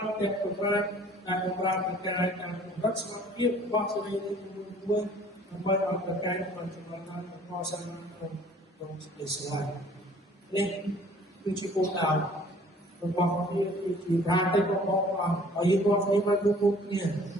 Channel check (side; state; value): both; normal; correlation 0.54